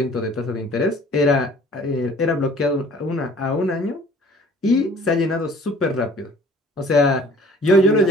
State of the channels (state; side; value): normal; both; correlation 0.52